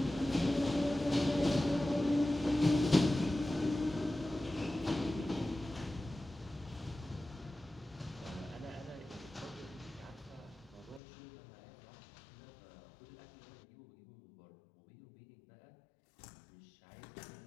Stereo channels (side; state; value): right; drops out; at 11.0 s